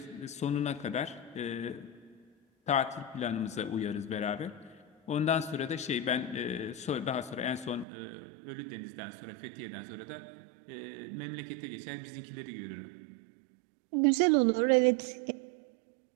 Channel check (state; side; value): drops out; left; at 7.9 s